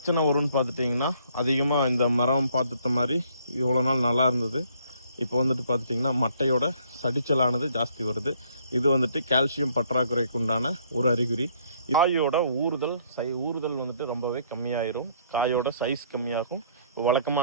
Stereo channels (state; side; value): inverted; both; correlation -0.64